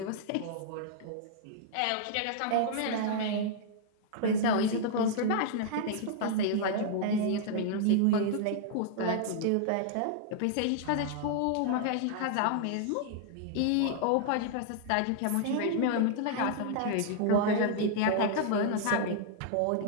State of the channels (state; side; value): different; both; correlation -0.01